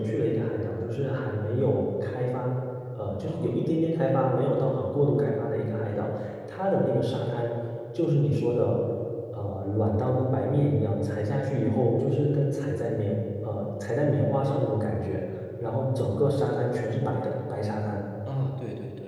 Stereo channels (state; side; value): identical; both; correlation 1.00